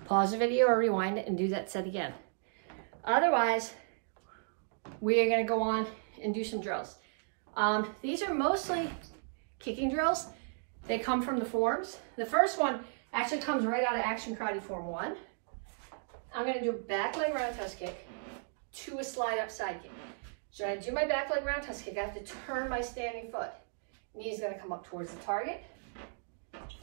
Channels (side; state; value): left; silent; digital silence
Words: pause the video or rewind it and do that set again. Otherwise, we are going to go on and do some drills. These are mostly kicking drills. They come from the forms. The first one actually comes right out of Action Karate Form 1. I'm going to do a back leg roundhouse kick to a slide up side kick. So when I do my back leg roundhouse kick, I have to turn my standing foot. Knee's going to come up towards the target.